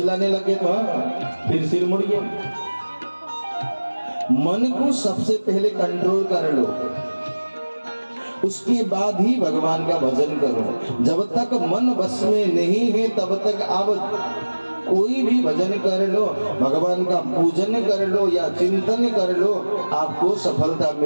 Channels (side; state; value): both; inverted; correlation -1.00